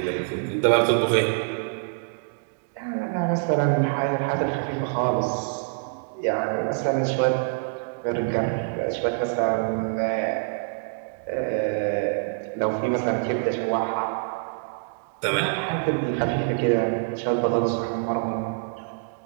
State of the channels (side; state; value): left; silent; 61 dB below the other